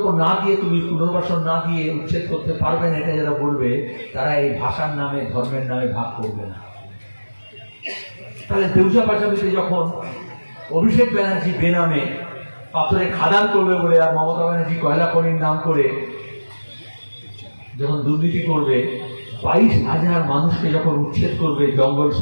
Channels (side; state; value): both; inverted; correlation -1.00